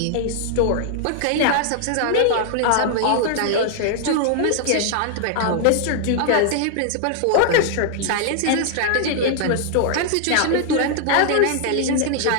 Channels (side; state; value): both; different; correlation -0.01